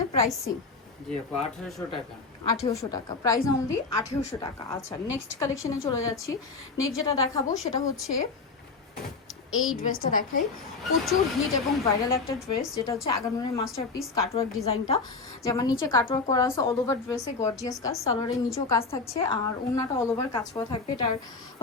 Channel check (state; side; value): quieter; right; 4.3 dB